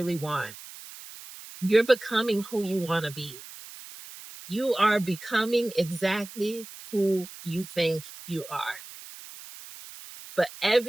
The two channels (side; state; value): right; noise; hiss, 15 dB below the sound